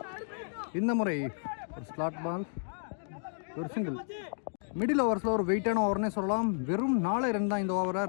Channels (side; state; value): right; silent; digital silence